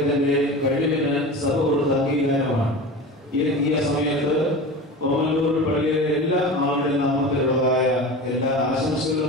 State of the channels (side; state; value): both; normal; correlation 0.31